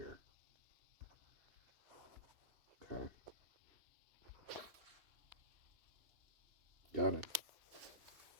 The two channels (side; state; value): left; late; 2.9 ms